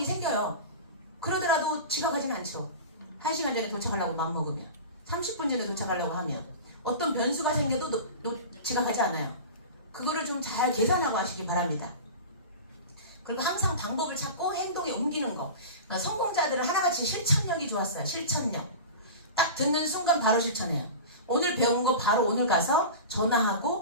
생겨요. 그러더라도 지각하지는 않죠. 1시간 전에 도착하려고 맘먹으면 30분 전에 도착하려고 하면 어떤 변수가 생겨도 지각하지 않아요. 그거를 좀 잘 계산하고 하시기 바랍니다. 그리고 항상 방법을 찾고 행동에 옮기는 거. 성공자들은 하나같이 실천력이 좋았어요. 실천력. 딱 듣는 순간 바로 실천해요. 오늘 배운 거 바로 오늘 가서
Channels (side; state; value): both; inverted; correlation -0.31